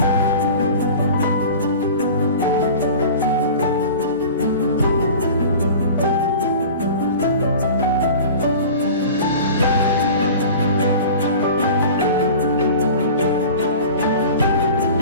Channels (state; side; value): inverted; both; correlation -0.38